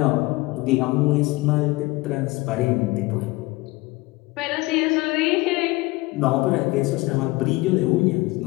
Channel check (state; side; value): quieter; right; 21.7 dB